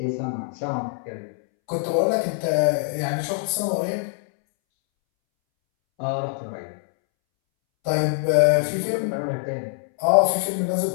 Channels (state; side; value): silent; right; 63 dB below the other